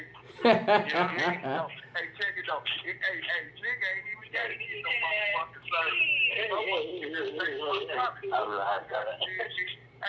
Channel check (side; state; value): both; identical; correlation 1.00